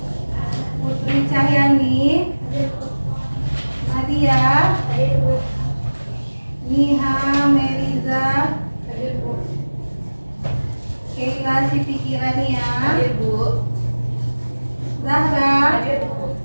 Putri Cahyani, Nadia, Niha Meriza, Keila Siti Kirania, Zahra,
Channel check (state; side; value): inverted; both; correlation -1.00